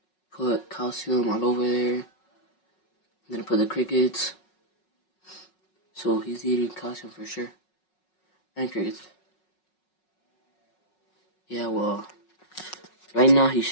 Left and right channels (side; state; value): right; late; 5.4 ms